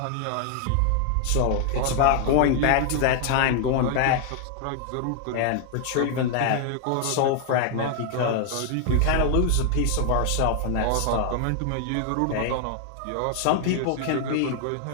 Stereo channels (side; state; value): both; different; correlation 0.00